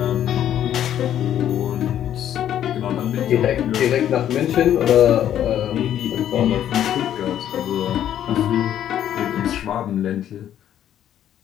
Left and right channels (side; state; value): right; quieter; 10.7 dB